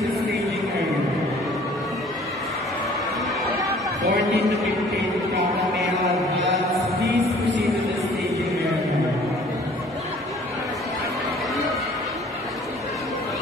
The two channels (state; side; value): normal; both; correlation 0.53